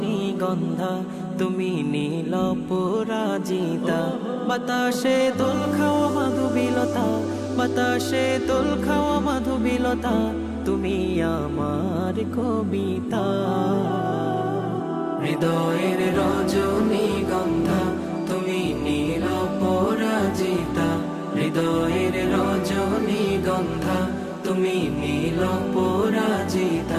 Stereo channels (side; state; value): both; identical; correlation 1.00